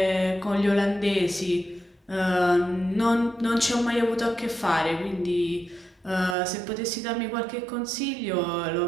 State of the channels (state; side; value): drops out; left; at 6.4 s